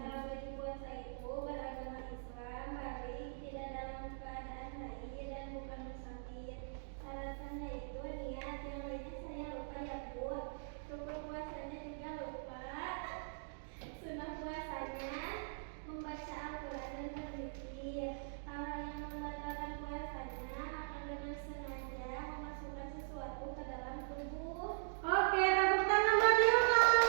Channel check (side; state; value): left; silent; digital silence